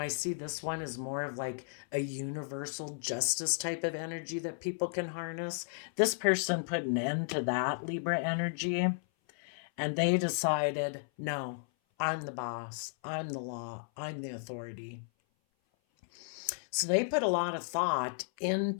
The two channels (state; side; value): silent; right; 55 dB below the other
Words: see this one as more of like a universal justice type of energy that people can harness. This person put an end to that Libra energy, and they decided, no, I'm the boss, I'm the law, I'm the authority. So they put a lot of thought